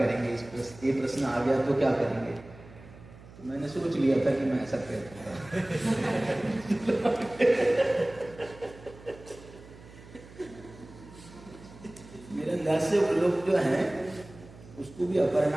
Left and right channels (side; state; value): right; noise; hum, 20 dB below the sound